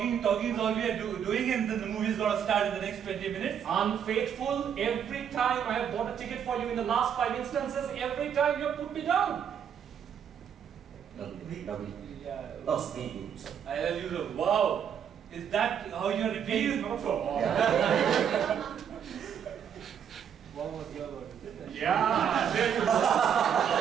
we are doing, and then the movie is going to start in the next 20 minutes. Unfaithful, every time I have bought a ticket for you in the last 5 instances, every time you have put me down. No, speed. I tell you, wow, is that how you are repeating? Not for all. What was your word? Yeah, there you go.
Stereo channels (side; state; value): left; quieter; 8.3 dB